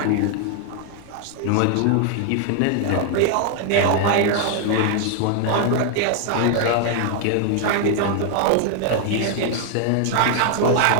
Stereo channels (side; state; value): both; different; correlation 0.00